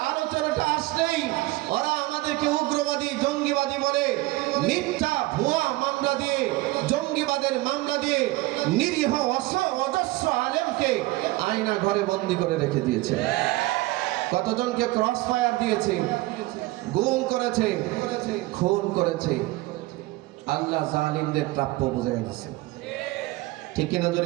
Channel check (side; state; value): left; quieter; 19.9 dB